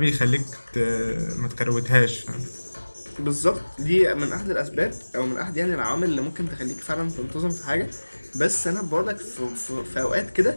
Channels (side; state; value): both; inverted; correlation -1.00